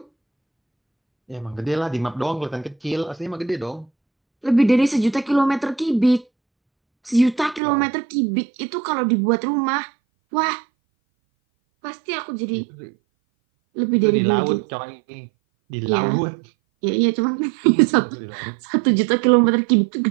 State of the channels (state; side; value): drops out; left; at 7.6 s